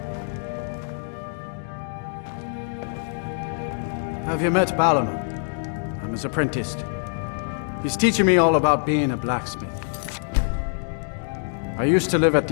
Have you met Balaman? I'm his apprentice. He's teaching me all about being a blacksmith. I used to live at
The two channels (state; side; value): silent; right; digital silence